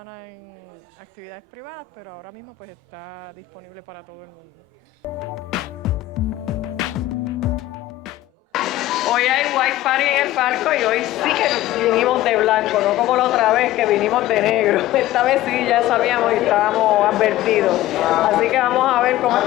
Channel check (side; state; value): right; quieter; 15.1 dB